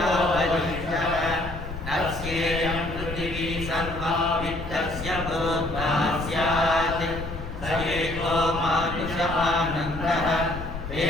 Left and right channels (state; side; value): noise; left; rumble, 9 dB below the sound